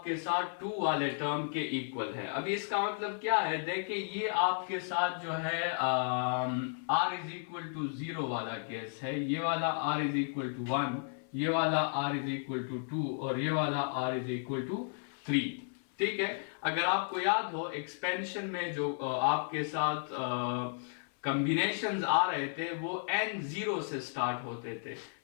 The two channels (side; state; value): right; silent; 55 dB below the other